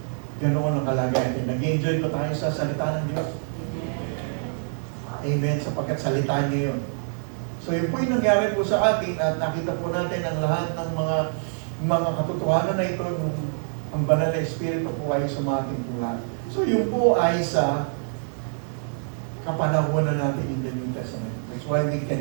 ganoon ang kalagayan. Nag-enjoy ko tayo sa salita ng Diyos. Amen. Sapagkat salita niya yun. So yun po yung nangyari po sa atin at nakita po natin ang lahat ng mga katotohanan na ito nung ang banal na Espiritu po ay sumating po lahat. So yun po ay sa kapanahunan natin in the New Testament. That's why we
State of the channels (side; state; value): left; silent; digital silence